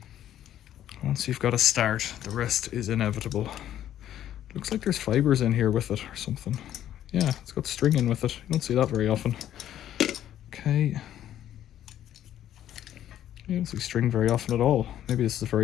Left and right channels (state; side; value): quieter; right; 11.5 dB